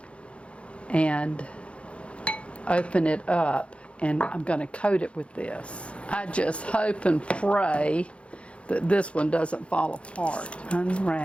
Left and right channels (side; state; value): right; late; 0.060 ms